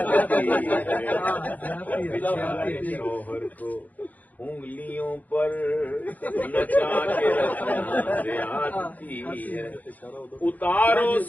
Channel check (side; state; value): right; late; 0.079 ms